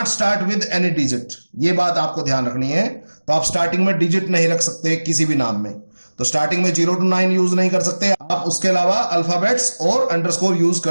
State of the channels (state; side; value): inverted; both; correlation -1.00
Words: start with any digit, ये बात आपको ध्यान रखनी है। तो आप स्टार्टिंग में डिजिट नहीं रख सकते किसी भी नाम में। तो स्टार्टिंग में 0 to 9 यूज नहीं कर सकते आप, उसके अलावा अल्फाबेट्स और अंडरस्कोर यूज